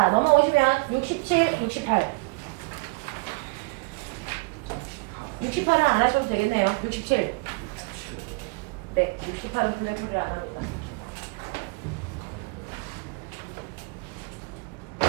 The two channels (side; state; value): left; quieter; 30.5 dB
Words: 넘어오시면 67, 68. 68은 안 하셔도 되겠네요. 67. 네, 68은 블랙홀을 안 합니다.